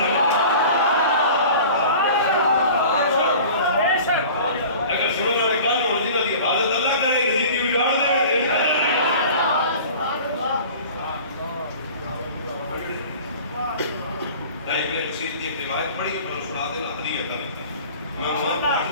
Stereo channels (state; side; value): inverted; both; correlation -0.42